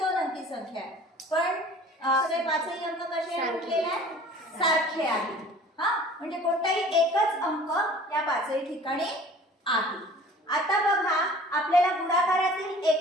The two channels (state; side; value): normal; both; correlation 0.47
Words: अंकी संख्या आहे, पण सगळे पाचही अंक कसे म्हटलेले आहेत? सारखे आहेत. म्हणजे कोणताही एकच अंक या पाचही ठिकाणी आहे. आता बघा, आपल्याला गुणाकारातील